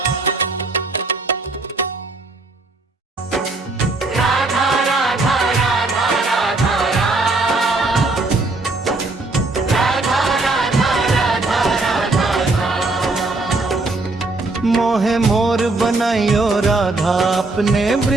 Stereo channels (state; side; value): quieter; left; 3.2 dB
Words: मोहे मोर बनाइयो राधा अपने